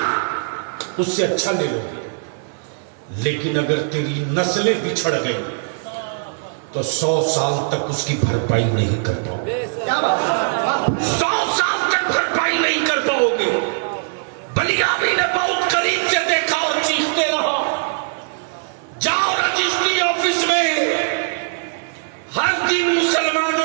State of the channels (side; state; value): left; silent; digital silence